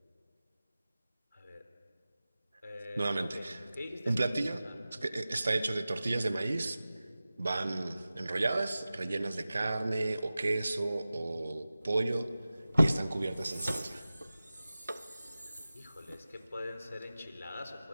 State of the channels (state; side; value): inverted; both; correlation -0.96